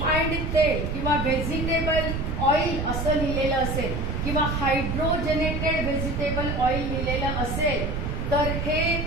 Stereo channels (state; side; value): noise; right; rumble, 2 dB below the sound